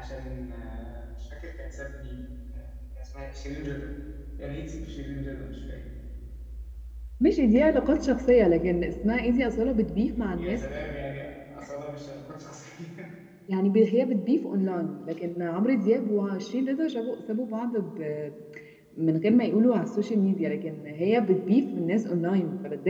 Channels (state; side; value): identical; both; correlation 1.00